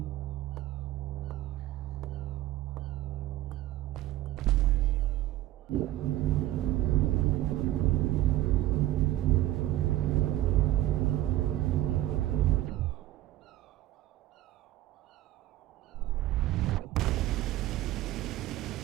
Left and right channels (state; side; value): quieter; left; 14.7 dB